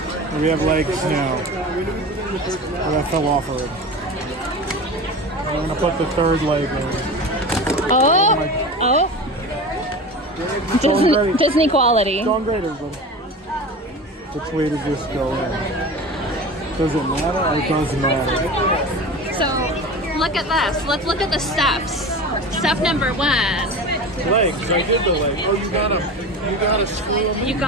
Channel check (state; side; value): normal; both; correlation 0.31